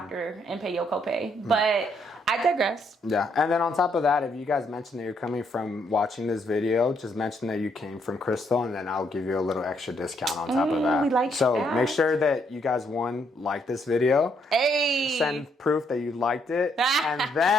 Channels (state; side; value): normal; both; correlation 0.73